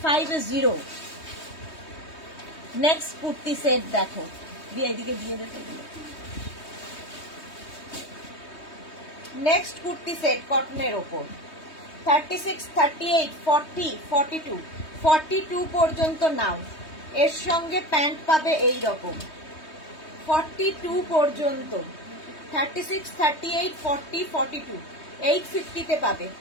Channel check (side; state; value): right; late; 3.2 ms